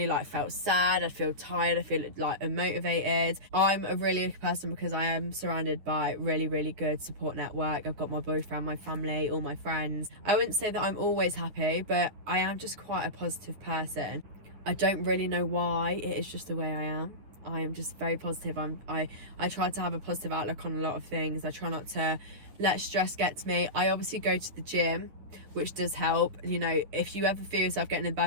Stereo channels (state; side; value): late; left; 10 ms